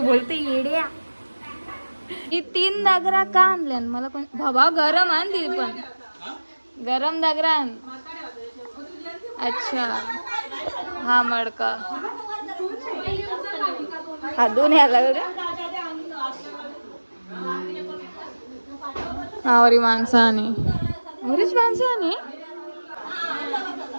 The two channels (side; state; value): both; inverted; correlation -1.00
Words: बोलते येड्या. ही 3 दागरा का आणल्या मला पण? बाबा गरम आण ती पण, गरम दागरा आण. अच्छा हा मडका हा दोन याला आवरी माणसाने, आवरीच माणसाने.